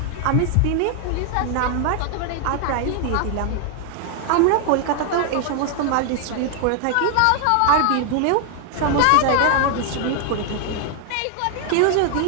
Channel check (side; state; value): both; different; correlation 0.00